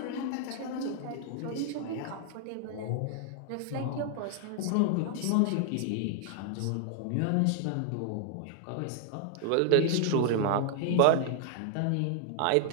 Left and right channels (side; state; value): both; different; correlation 0.00